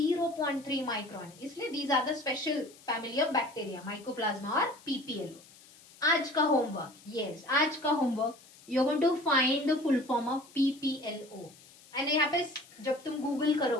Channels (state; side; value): noise; left; hiss, 24 dB below the sound